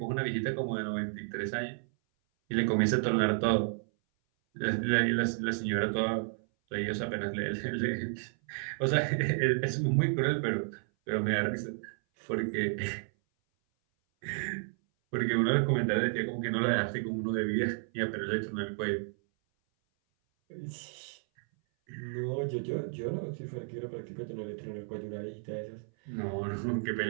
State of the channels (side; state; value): left; silent; 56 dB below the other